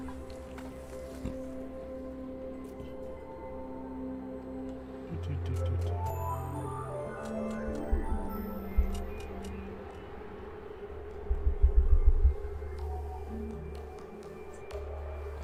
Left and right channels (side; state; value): both; identical; correlation 1.00